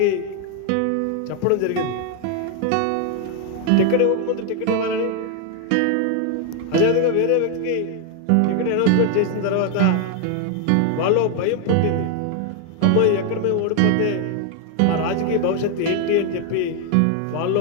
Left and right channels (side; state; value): both; different; correlation 0.01